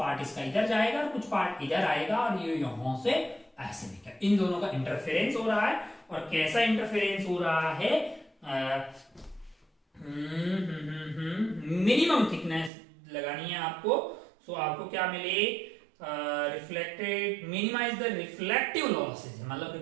इसका इधर जाएगा और कुछ पार्ट इधर आएगा, और ये यहां से ऐसे निकल, इन दोनों का इंटरफेरेंस हो रहा है। और कैसा इंटरफेरेंस हो रहा है, मिनिमम थिकनेस लगानी है आपको। सो आपको क्या मिले, reflected, minimise the reflective losses, मतलब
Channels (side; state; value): left; drops out; at 12.7 s